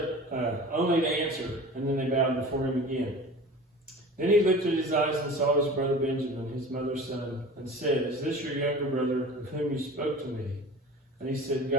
only to answer, and then they bowed before him again. Then he lifted his eyes and saw his brother Benjamin, his mother's son, and said, "Is this your younger brother of whom you spoke to me?" And he said,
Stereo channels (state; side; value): normal; both; correlation 0.38